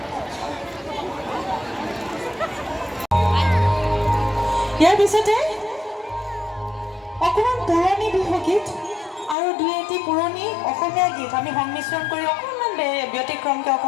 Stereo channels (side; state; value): right; drops out; at 9.3 s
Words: ইয়াৰ পিছতে অকণমান পুৰণি বিহুগীত আৰু দুই এটি পুৰণি অসমীয়া গীত আমি সংমিশ্ৰণ কৰি অকণমান ব্যতিক্ৰমকৈ